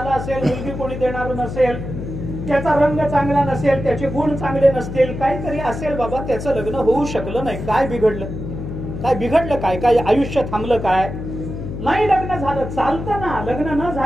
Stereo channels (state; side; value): noise; left; hum, 7 dB below the sound